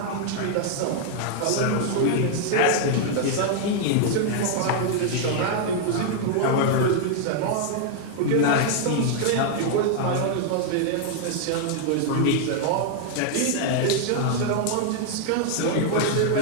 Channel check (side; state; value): both; different; correlation 0.00